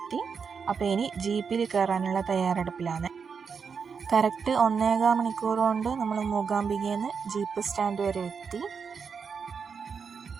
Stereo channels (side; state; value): left; quieter; 6.0 dB